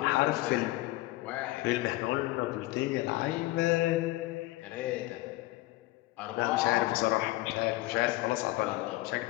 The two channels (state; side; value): quieter; right; 18.8 dB